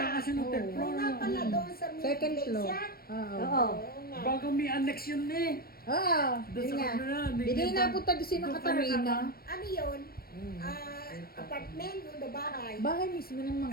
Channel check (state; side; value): late; right; 0.44 ms